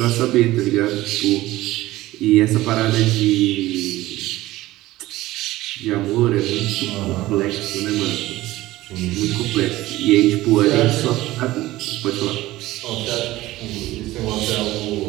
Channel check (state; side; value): quieter; left; 17.1 dB